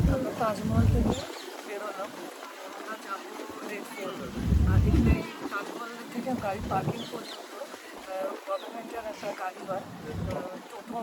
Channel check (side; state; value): both; identical; correlation 1.00